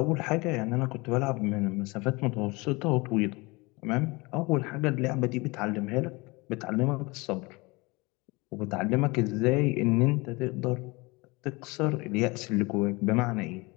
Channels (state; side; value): quieter; right; 25.0 dB